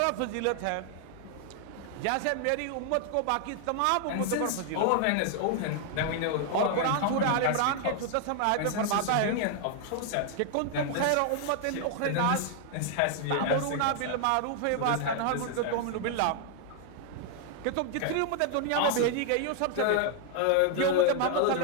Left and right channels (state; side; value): different; both; correlation 0.00